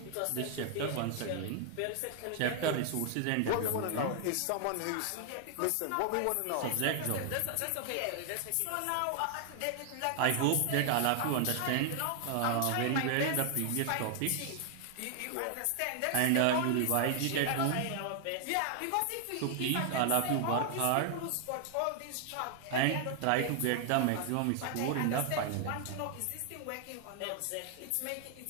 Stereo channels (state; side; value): different; both; correlation 0.00